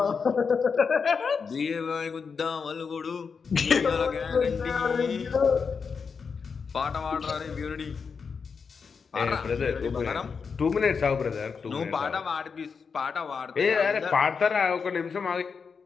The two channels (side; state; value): right; quieter; 5.6 dB